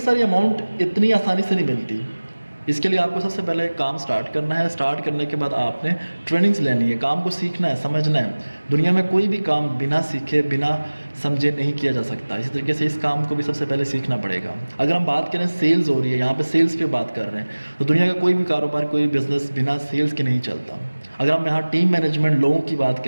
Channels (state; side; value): inverted; both; correlation -1.00